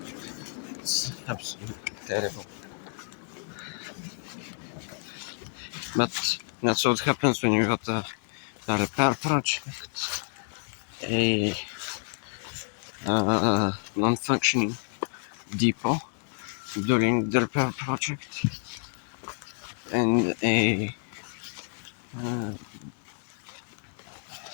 It's absolutely terrible. But that's what happens when you got a repair project, a non-functioning depot during the repair project, and a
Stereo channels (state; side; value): silent; right; 57 dB below the other